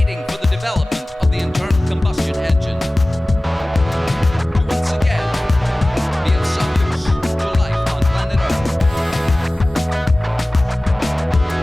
for the development of the internal combustion engine. To once again be of some use to life on planet Earth.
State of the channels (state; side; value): normal; both; correlation 0.98